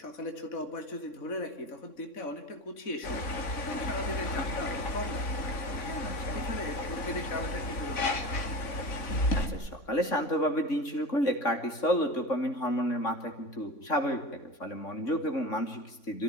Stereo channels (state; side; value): late; right; 3.6 ms